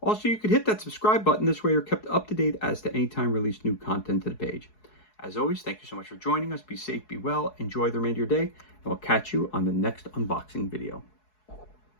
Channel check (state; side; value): late; right; 4.7 ms